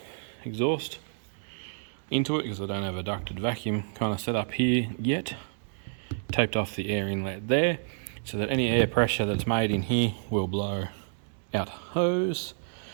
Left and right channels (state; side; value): silent; left; digital silence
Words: exhaust into it because I don't have a ducted vacuum kind of set up here yet. Taped off the air inlet there so that any air pressure that's made in here will blow out hose,